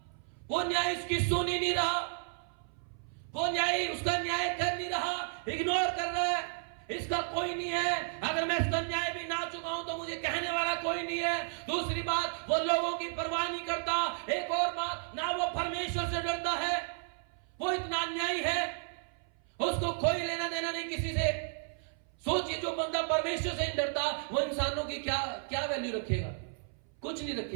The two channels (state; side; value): silent; left; 56 dB below the other